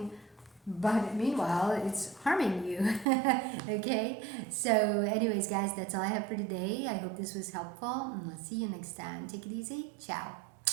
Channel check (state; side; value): drops out; left; at 3.1 s